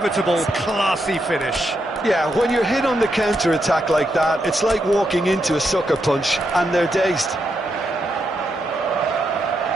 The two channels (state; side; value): normal; both; correlation 0.82